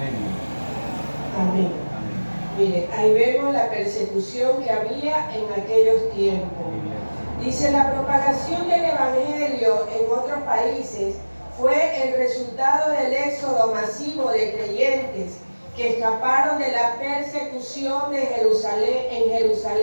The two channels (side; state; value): both; inverted; correlation -1.00